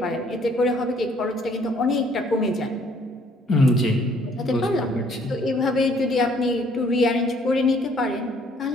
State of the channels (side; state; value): both; normal; correlation 0.62